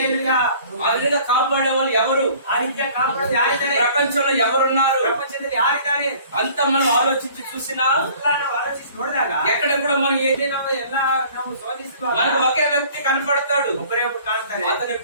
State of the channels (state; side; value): inverted; both; correlation -0.51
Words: ఆ విధంగా కాపాడే వాళ్ళు ఎవరు? ಆ ರೀತಿಯ ಕಾಪಾಡೋದು ಯಾರಿದ್ದಾರೆ? ప్రపంచంలో ఎవరున్నారు? ಪ್ರಪಂಚದಲ್ಲಿ ಯಾರಿದ್ದಾರೆ? అంత మనం ఆలోచించి చూసినా ಎಲ್ಲ ನಾವು ಆಲೋಚಿಸಿ ನೋಡಿದಾಗ ఎక్కడ కూడా మనం ಇಲ್ಲಿ ನಾವು ಎಲ್ಲ ನಾವು ಶೋಧಿಸುವಾಗ మనకు ఒకే వ్యక్తి కనపడతాడు. ಒಬ್ಬರೇ ಒಬ್ಬರು ಕಾಣ್ತಾರೆ. అతని